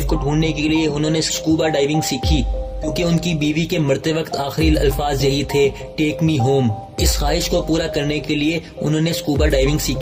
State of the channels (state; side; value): identical; both; correlation 1.00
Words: को ढूंढने के लिए उन्होंने स्कूबा डाइविंग सीखी क्योंकि उनकी बीवी के मरते वक्त आखिरी अल्फाज यही थे, टेक मी होम। इस ख्वाहिश को पूरा करने के लिए उन्होंने स्कूबा डाइविंग